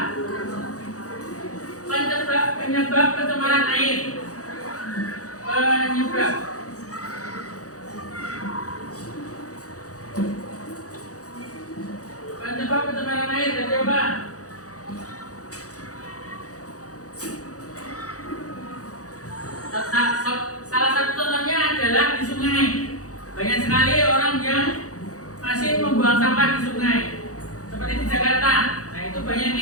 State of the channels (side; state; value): right; late; 0.66 ms